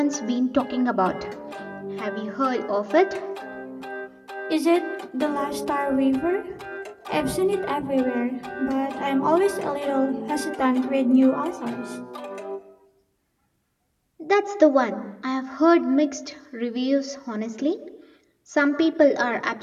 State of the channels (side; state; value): both; identical; correlation 1.00